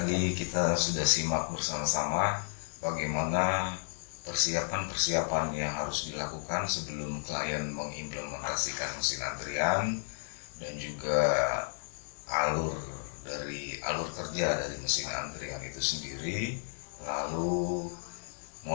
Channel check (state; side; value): silent; right; digital silence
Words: kita sudah simak bersama-sama bagaimana persiapan-persiapan yang harus dilakukan sebelum klien mengimplementasikan mesin antrian, dan juga alur kerja dari mesin antrian itu sendiri, lalu